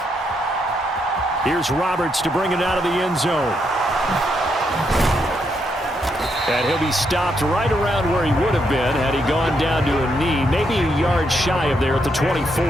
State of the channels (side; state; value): both; normal; correlation 0.78